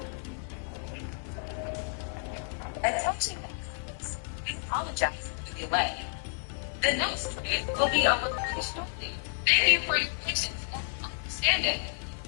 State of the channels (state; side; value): silent; right; 57 dB below the other